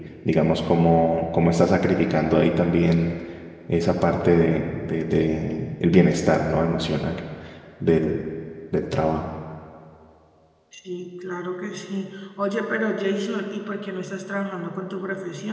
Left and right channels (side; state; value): both; identical; correlation 1.00